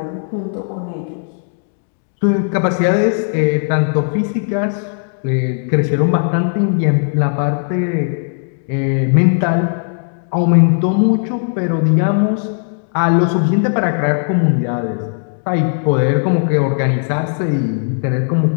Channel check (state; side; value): silent; right; digital silence